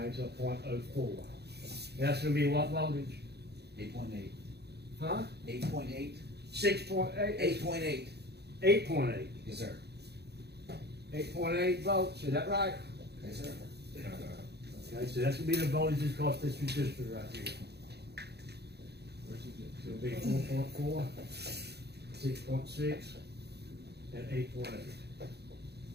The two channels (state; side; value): late; left; 0.48 ms